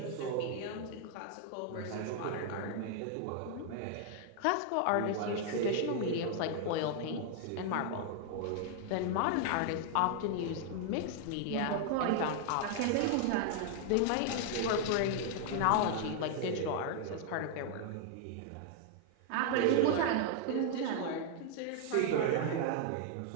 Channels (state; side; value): different; both; correlation 0.00